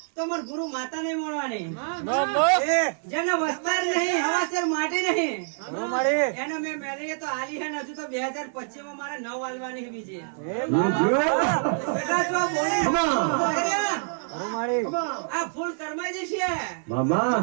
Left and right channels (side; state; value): left; silent; 56 dB below the other